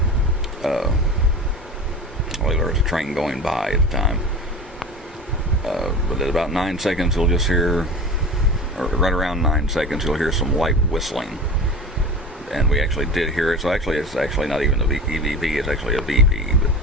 Well, there was a train going by at the time. But at about 9 seconds, you'll just hear, or right around 9 seconds, you'll hear some light whistling. and we actually did hear it. So actually, it's actually not even a EVP; it's actually a VP.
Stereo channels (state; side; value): normal; both; correlation 0.32